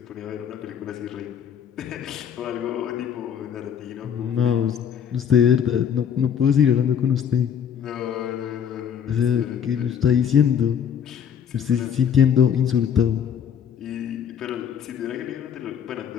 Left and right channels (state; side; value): quieter; right; 8.4 dB